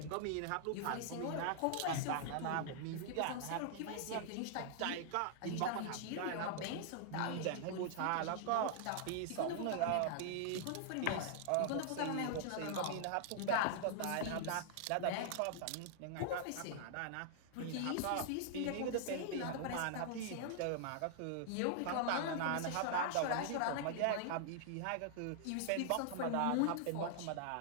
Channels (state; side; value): different; both; correlation -0.01